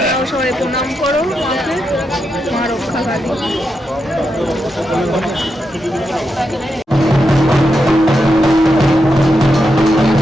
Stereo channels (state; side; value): normal; both; correlation 0.85